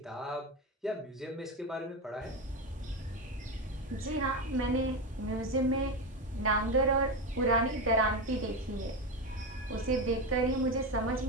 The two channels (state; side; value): normal; both; correlation 0.16